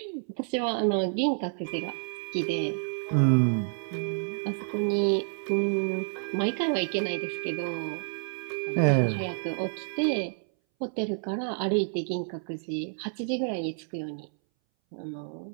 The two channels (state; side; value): silent; left; 58 dB below the other